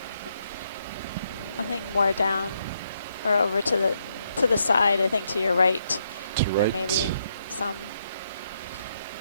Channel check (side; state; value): both; inverted; correlation -0.77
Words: think more down or over to the side. I think to your right. To There right. may be some.